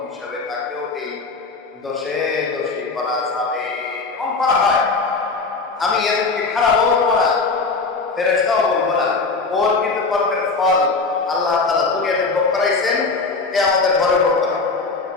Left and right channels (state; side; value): quieter; right; 4.1 dB